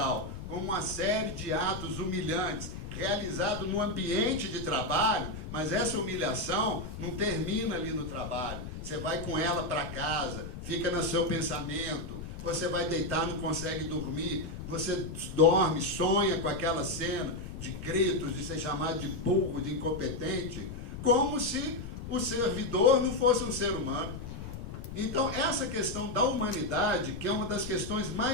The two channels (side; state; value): left; noise; rumble, 9 dB below the sound